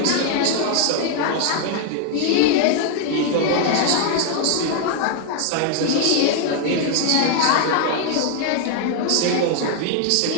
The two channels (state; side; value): different; both; correlation 0.00